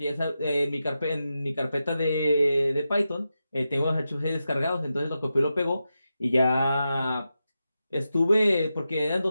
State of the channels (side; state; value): both; inverted; correlation -0.90